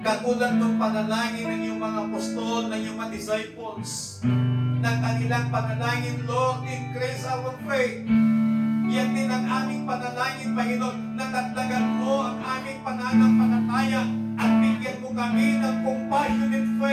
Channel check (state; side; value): identical; both; correlation 1.00